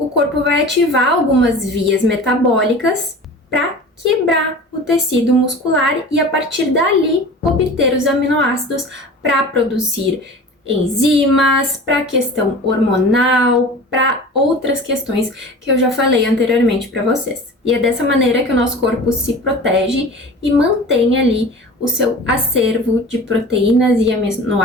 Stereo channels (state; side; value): normal; both; correlation 0.38